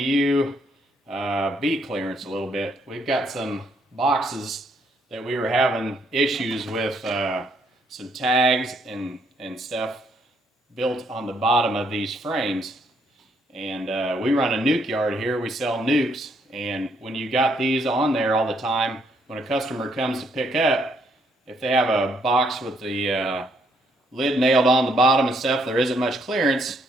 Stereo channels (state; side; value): normal; both; correlation 0.71